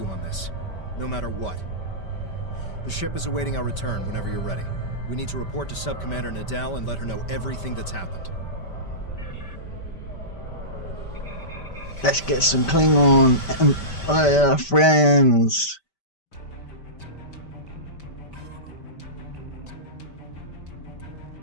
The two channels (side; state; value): right; late; 5.1 ms